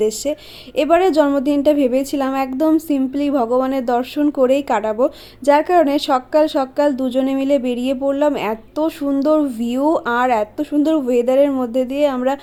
এবারে জন্মদিনটা ভেবেছিলাম একদম সিম্পলি ভগবানের দর্শন করেই কাটাবো, যার কারণে সকাল সকাল দুজনে মিলে বেরিয়ে পড়লাম। এত সুন্দর ভিউ আর এত সুন্দর ওয়েদারের মধ্যে দিয়ে আমরা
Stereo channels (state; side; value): identical; both; correlation 1.00